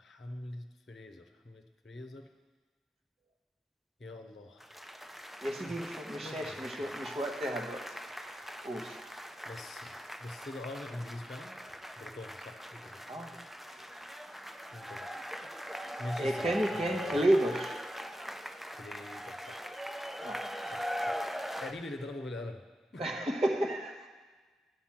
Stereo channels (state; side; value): normal; both; correlation 0.89